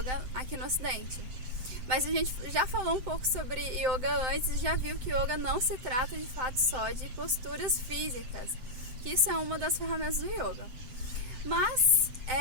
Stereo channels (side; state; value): left; late; 7.8 ms